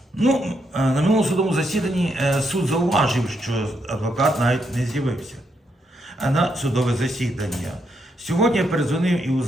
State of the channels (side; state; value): both; normal; correlation 0.78